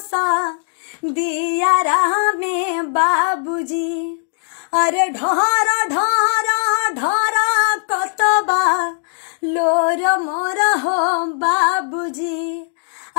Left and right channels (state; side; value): silent; right; digital silence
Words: दियारा में बाबूजी। अरे ढोर ढोर ढोर कतबा लोर मोर हो बाबूजी,